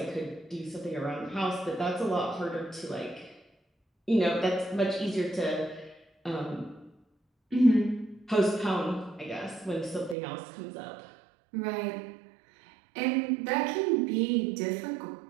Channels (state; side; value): drops out; left; at 10.2 s